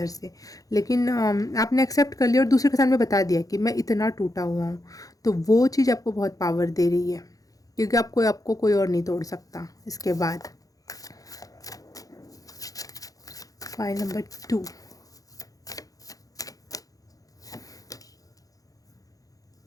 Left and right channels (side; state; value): right; late; 0.17 ms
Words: से। लेकिन आपने एक्सेप्ट कर लिया और दूसरे के सामने बता दिया कि मैं इतना टूटा हुआ हूँ, तो वो चीज़ आपको बहुत पावर दे रही है, क्योंकि आपको कोई और नहीं तोड़ सकता। इसके बाद फाइल नंबर 2,